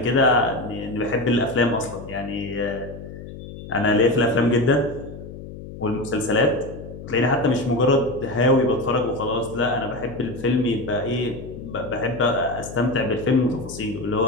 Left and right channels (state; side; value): noise; left; hum, 13 dB below the sound